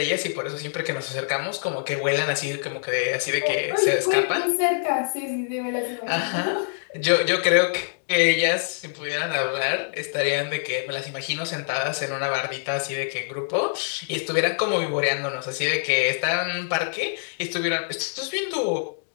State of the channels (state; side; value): silent; right; digital silence